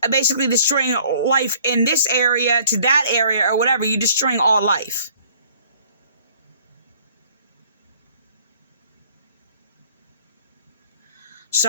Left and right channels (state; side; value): inverted; both; correlation -0.56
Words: Basically destroying life in this area to that area or whatever. You're destroying all life. So